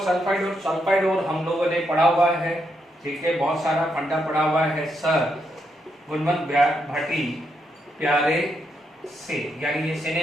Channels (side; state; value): both; normal; correlation 0.80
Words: ore. Sulphide ore हम लोगों ने पढ़ा हुआ है। ठीक है, बहुत सारा फंडा पढ़ा हुआ है सर गुणवंत भाटी प्यारे से, यानी ये